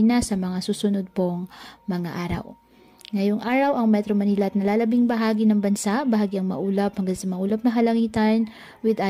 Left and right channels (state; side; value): identical; both; correlation 1.00